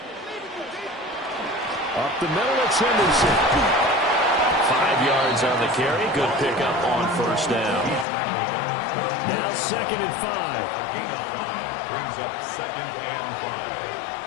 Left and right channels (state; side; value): drops out; right; at 8.1 s